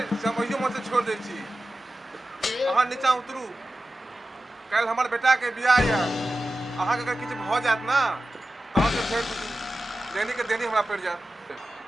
हम अहियो में से छोड़ दै छी। अहाँ नीचा उतरू, काल्हि हमर बेटा के बियाह यऽ। अहाँ के अगर किछु भऽ जायत ना तऽ अहाँ से फेर देनी के देनी हमरा पड़ि जायत।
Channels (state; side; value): normal; both; correlation 0.94